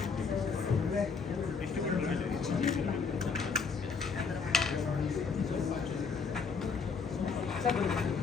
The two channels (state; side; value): quieter; right; 5.2 dB